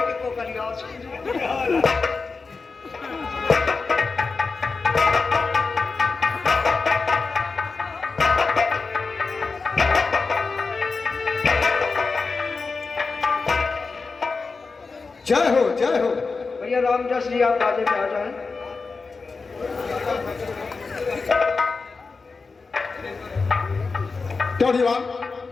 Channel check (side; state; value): right; quieter; 4.3 dB